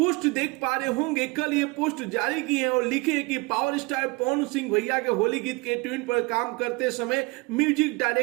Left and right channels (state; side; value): quieter; left; 26.0 dB